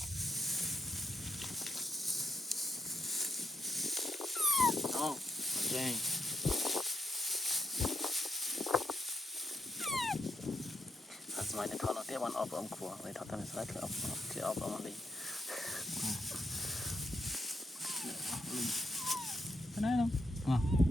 oh okay sớm này thọ nó tiếp ăn ốp ốm khua vậy thọ tao sẽ thử ốp thì ốp ốm đi cái này không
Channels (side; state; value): both; normal; correlation 0.80